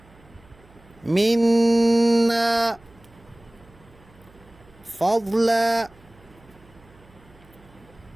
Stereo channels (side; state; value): right; noise; hum, 27 dB below the sound